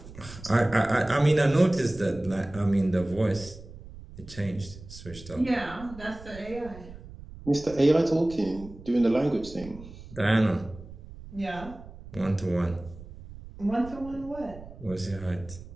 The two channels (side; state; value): right; noise; rumble, 16 dB below the sound